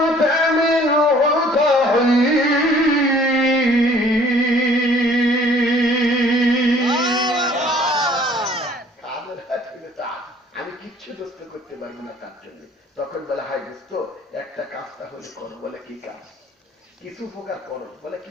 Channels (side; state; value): both; normal; correlation 0.55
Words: আমি কিচ্ছু দোস্ত করতে পারবো না তার জন্য। তখন বলে হাই দোস্ত একটা কাজ তাহলে করো। বলে কি কাজ? কিছু উপকার করো। বলে